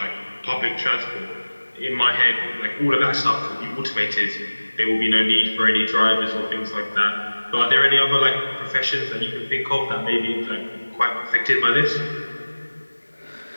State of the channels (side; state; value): both; inverted; correlation -1.00